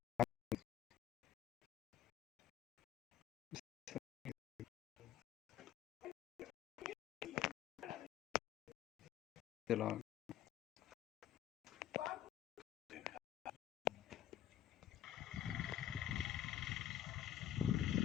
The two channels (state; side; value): quieter; right; 12.0 dB